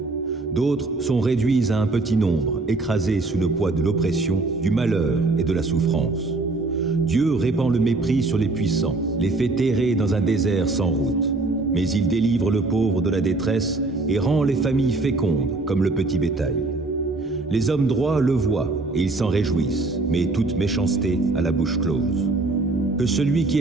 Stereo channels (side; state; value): left; quieter; 3.3 dB